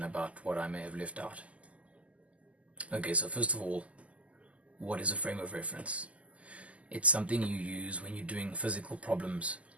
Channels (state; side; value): late; left; 0.066 ms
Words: about what I may have left out. Okay, so first of all, what is a frame of reference? It's something you use when you're doing physical problems